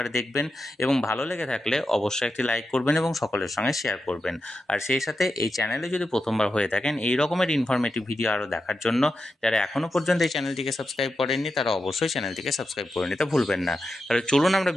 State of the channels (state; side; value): normal; both; correlation 0.88